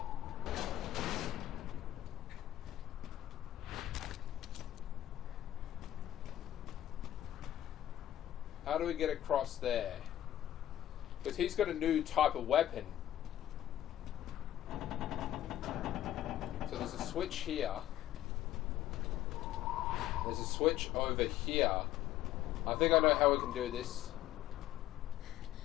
How do we get across there? Because he's got a new type of weapon. So there's a switch here. There's a switch over here. I think I know how we can do this.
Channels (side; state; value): right; quieter; 12.8 dB